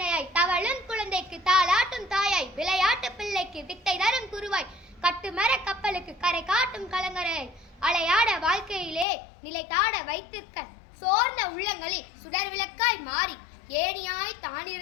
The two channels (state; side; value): drops out; right; at 9.1 s